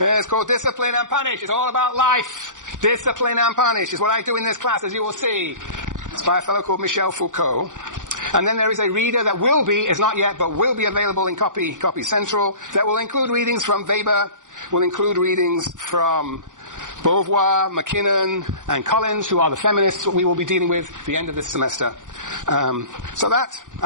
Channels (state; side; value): late; left; 0.87 ms